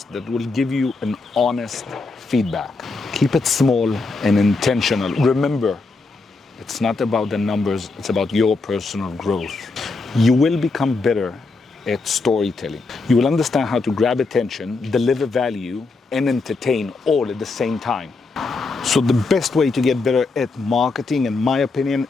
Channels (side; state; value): right; quieter; 3.8 dB